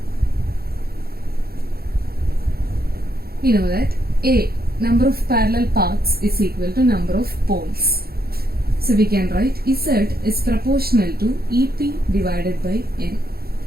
we know that A, number of parallel paths, is equal to number of poles. So we can write Z is proportional to EP divided by N.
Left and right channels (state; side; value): late; left; 0.45 ms